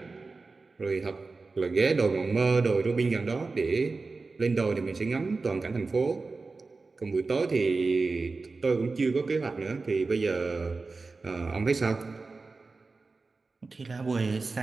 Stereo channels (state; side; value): quieter; left; 3.9 dB